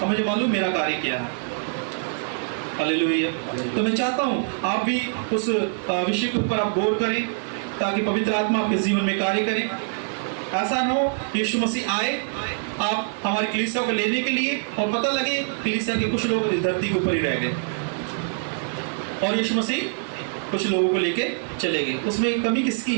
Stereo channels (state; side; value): silent; left; digital silence